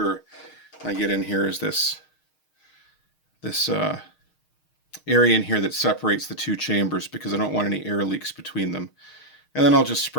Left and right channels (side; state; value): right; late; 6.5 ms